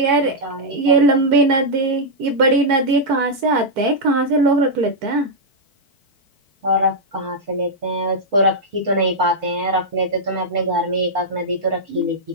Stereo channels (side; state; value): left; late; 4.5 ms